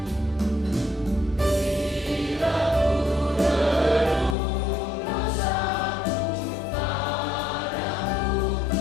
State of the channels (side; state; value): right; drops out; at 4.4 s